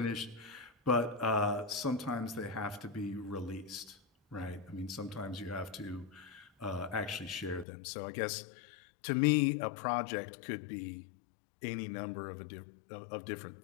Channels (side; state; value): right; drops out; at 7.7 s